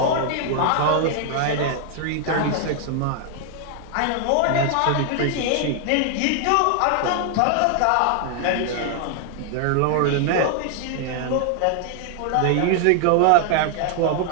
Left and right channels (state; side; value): different; both; correlation 0.00